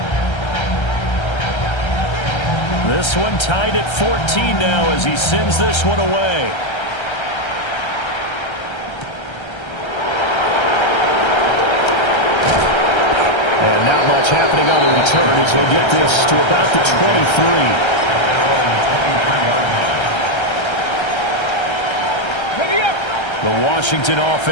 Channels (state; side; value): late; right; 1.3 ms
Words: 14. This one tied at 14 now as he sends this one away. And not much happening on the return as he'll get this to about the 23. The Washington